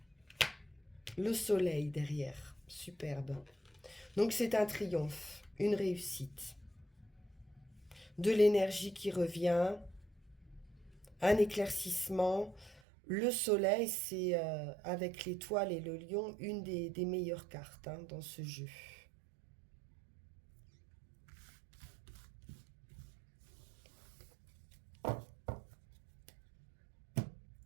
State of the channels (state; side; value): drops out; left; at 12.8 s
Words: Le soleil derrière, superbe. Donc c'est un triomphe, une réussite. De l'énergie qui revient, un éclaircissement. Le soleil, c'est avec l'étoile et le lion, une des meilleures cartes hein, dans ce jeu.